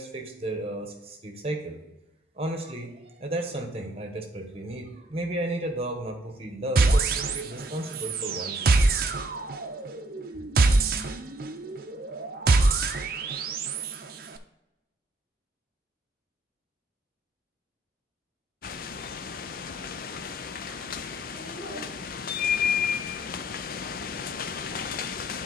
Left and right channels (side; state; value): both; normal; correlation 0.66